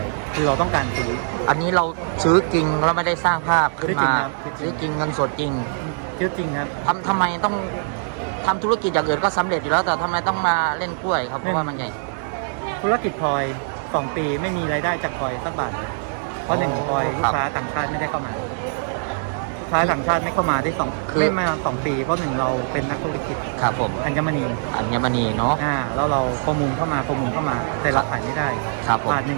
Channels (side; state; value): left; silent; digital silence